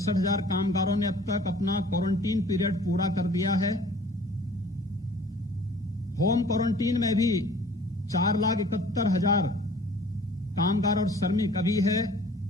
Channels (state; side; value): normal; both; correlation 0.50